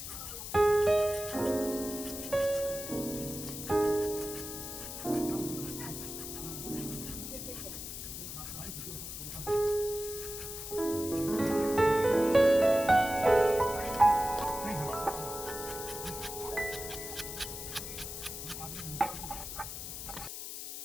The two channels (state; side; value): noise; left; hiss, 8 dB below the sound